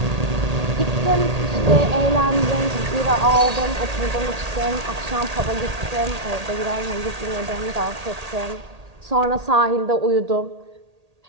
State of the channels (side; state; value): left; late; 1.8 ms